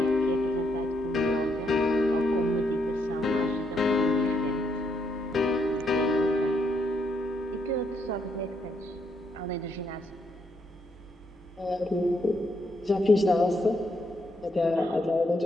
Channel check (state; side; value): normal; both; correlation 0.75